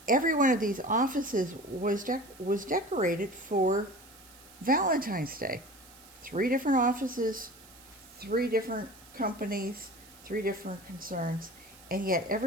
every one of these offices was decorated for Valentine's Day. 3 different offices, 3 different companies, 3 different concerns, and yet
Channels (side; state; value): right; noise; hiss, 22 dB below the sound